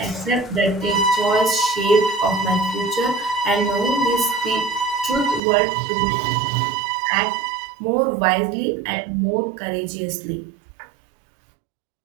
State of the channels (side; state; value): left; drops out; at 5.4 s